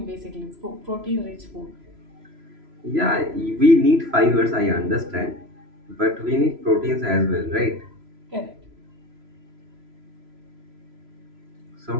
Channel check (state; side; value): late; left; 3.0 ms